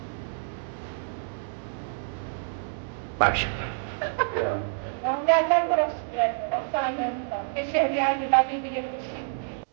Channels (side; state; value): left; silent; digital silence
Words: शहरियार दिलाती के लिए